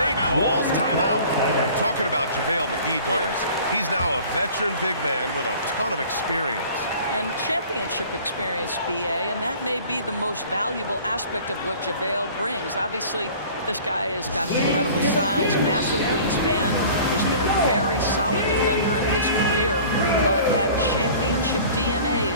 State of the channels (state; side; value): inverted; both; correlation -0.46